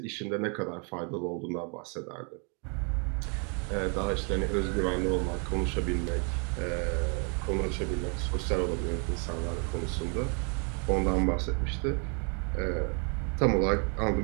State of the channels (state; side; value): quieter; left; 37.9 dB